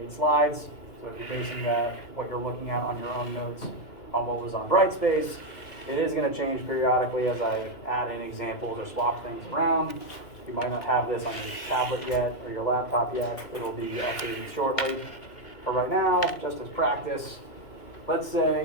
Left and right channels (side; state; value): right; late; 2.2 ms